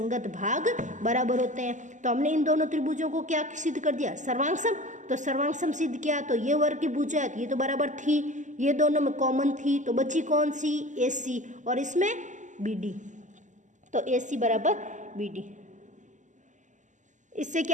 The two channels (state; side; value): late; left; 0.36 ms